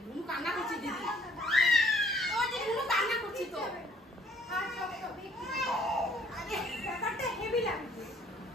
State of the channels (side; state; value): both; normal; correlation 0.61